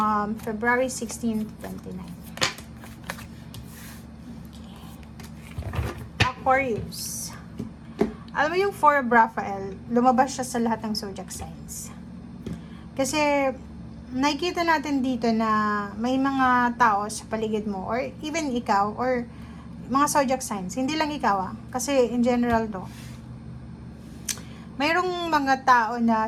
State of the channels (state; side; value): identical; both; correlation 1.00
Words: February 16 to 29. Okay. Aquarius. Alam mo yung Four of Raphael, lumabas siya sa lahat ng zodiac signs. Kasi nakikita natin dito na may mga tao sa paligid mo or even ikaw or mga zodiac signs. Hindi lang ikaw kasi in general to. Mayroong mga tao na